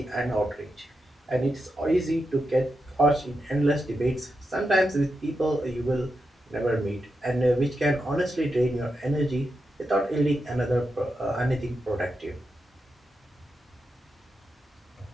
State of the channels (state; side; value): normal; both; correlation 0.87